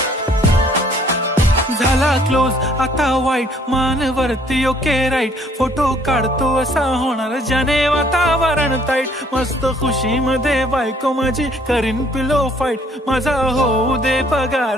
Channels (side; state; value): both; normal; correlation 0.61